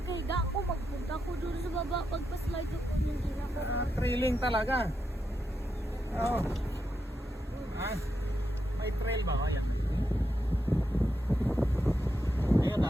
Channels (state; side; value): normal; both; correlation 0.85